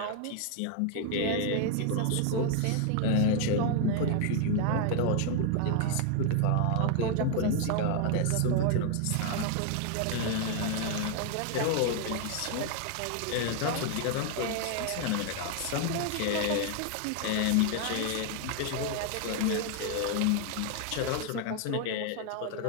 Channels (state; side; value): different; both; correlation 0.00